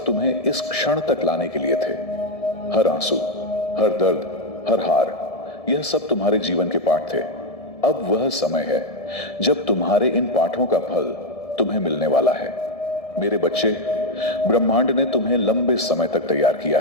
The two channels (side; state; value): right; late; 1.7 ms